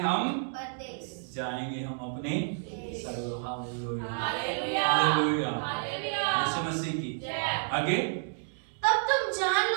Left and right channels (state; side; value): silent; left; digital silence